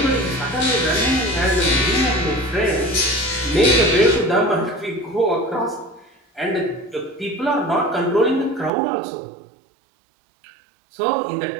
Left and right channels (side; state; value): left; drops out; at 8.7 s